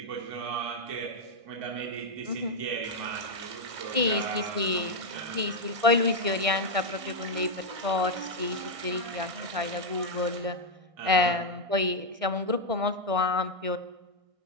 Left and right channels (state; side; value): late; left; 1.6 ms